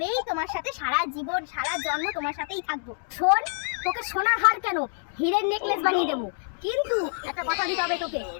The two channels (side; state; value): right; silent; 60 dB below the other